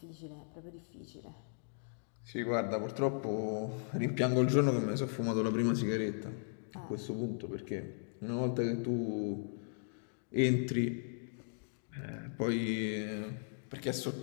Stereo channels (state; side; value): silent; right; digital silence